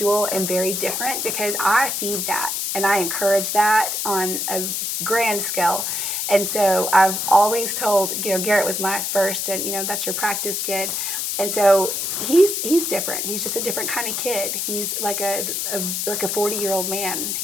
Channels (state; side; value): noise; left; hiss, 1 dB below the sound